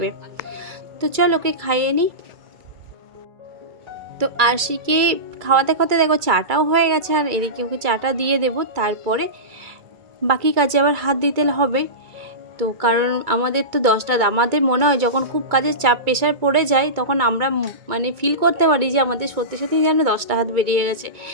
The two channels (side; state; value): left; late; 2.3 ms